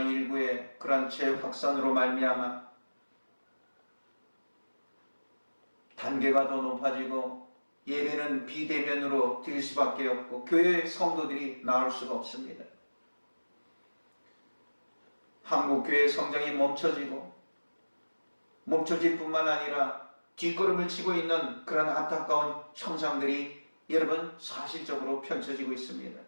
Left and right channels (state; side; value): inverted; both; correlation -1.00